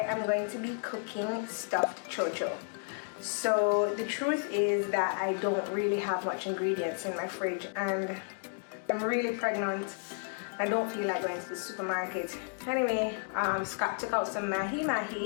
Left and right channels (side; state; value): right; silent; 56 dB below the other